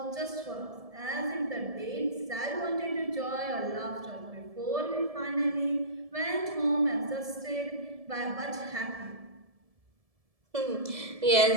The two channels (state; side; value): late; left; 1.7 ms